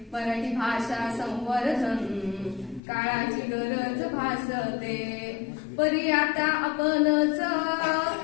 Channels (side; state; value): right; drops out; at 2.8 s